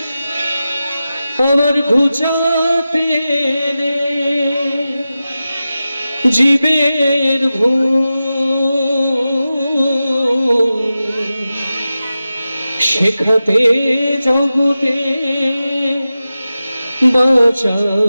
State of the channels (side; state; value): both; inverted; correlation -0.94